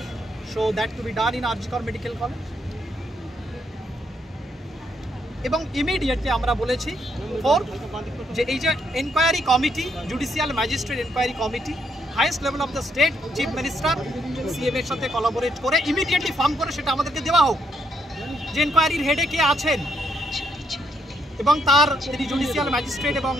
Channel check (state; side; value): normal; both; correlation 0.75